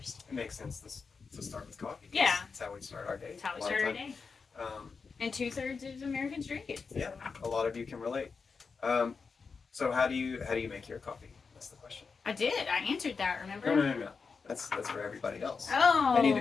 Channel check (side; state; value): right; quieter; 5.1 dB